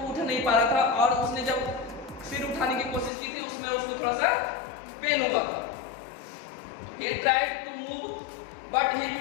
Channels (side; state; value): right; drops out; at 3.1 s